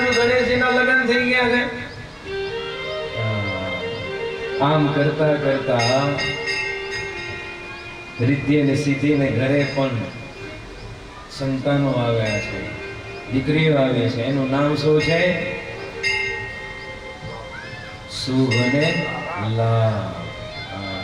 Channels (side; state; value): both; identical; correlation 1.00